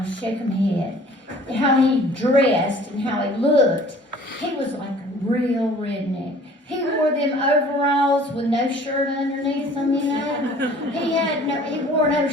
Shakemhead, how he dressed and how he looked. He was like a real redneck. He wore them overalls with no shirt underneath them, you know. He wore no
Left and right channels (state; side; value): normal; both; correlation 0.50